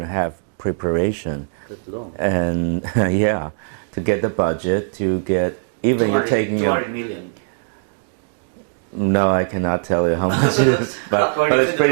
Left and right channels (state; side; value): silent; left; digital silence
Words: a half preparation, that's long. and yeah, to get the budget, to get even you're taking 200 million. No, I cannot tell you how much it is, but According it's to the